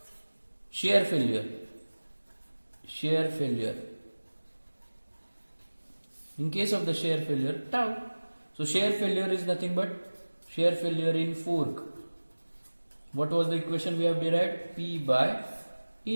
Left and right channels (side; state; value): both; inverted; correlation -1.00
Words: shear failure. Shear failure. In case of the shear failure, tau. So shear failure is nothing but shear failure in fork. What was the equation we have derived? P by